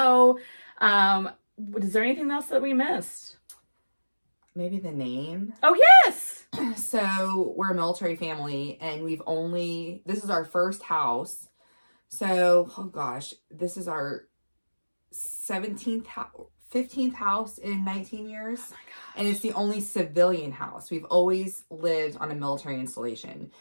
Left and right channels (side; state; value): both; inverted; correlation -1.00